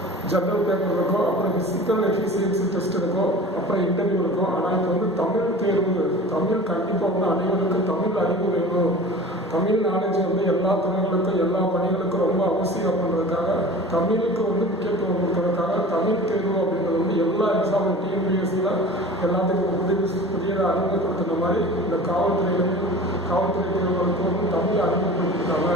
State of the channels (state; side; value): normal; both; correlation 0.39